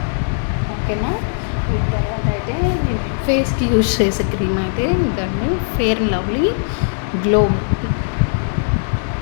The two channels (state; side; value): silent; right; 67 dB below the other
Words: ఓకేనా. వీటి తర్వాత అయితే నేను ఫేస్కి యూజ్ చేసే క్రీమ్ అయితే ఇదండి, ఫెయిర్ అండ్ లవ్లీ గ్లో.